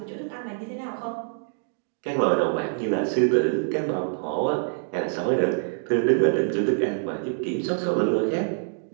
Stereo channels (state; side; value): silent; left; 61 dB below the other